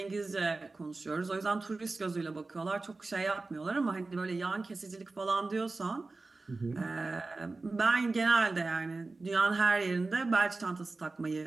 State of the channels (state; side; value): quieter; left; 3.5 dB